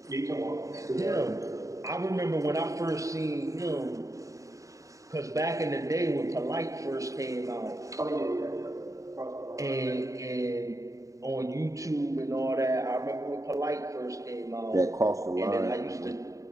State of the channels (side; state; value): left; late; 0.16 ms